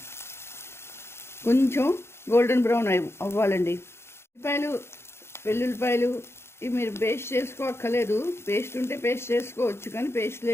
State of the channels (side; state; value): right; late; 0.12 ms